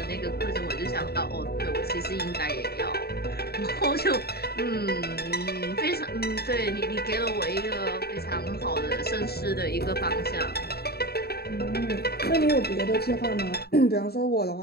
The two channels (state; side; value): late; right; 0.46 ms